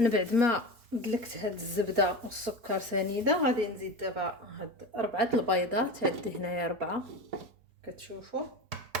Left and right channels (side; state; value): left; late; 4.3 ms